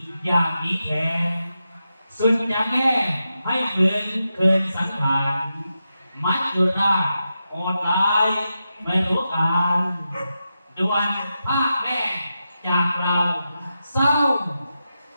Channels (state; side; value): inverted; both; correlation -0.89